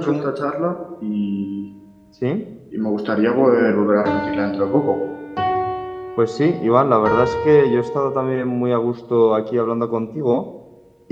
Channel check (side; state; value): both; identical; correlation 1.00